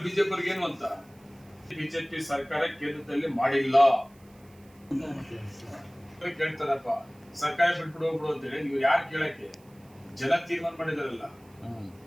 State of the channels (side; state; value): right; noise; hiss, 30 dB below the sound